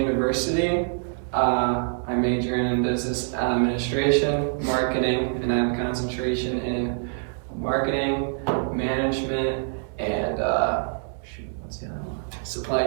I major in business administration, marketing, and I have a concentration in marketing, management, and what's the other one? Supply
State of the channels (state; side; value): silent; left; digital silence